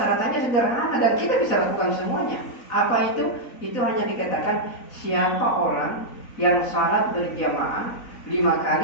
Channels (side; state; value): right; late; 4.0 ms